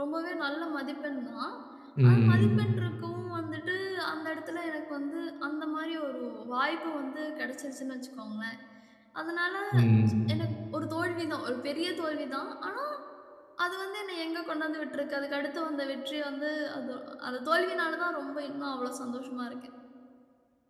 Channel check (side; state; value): both; identical; correlation 1.00